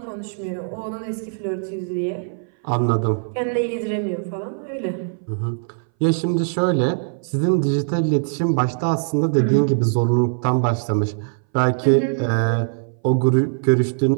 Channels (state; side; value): silent; left; 61 dB below the other